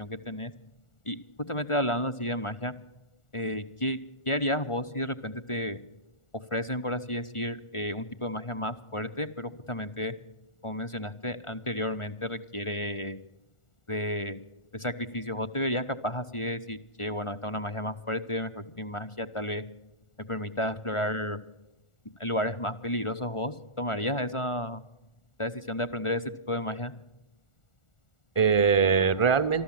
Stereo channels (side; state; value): right; late; 1.4 ms